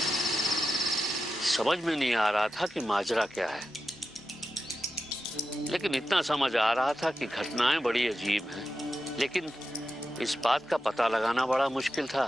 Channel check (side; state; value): both; normal; correlation 0.90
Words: समझ में नहीं आ रहा था कि माजरा क्या है, लेकिन इतना समझ आ रहा था कि घटनाएं बड़ी अजीब हैं। लेकिन इस बात का पता लगाना बड़ा मुश्किल था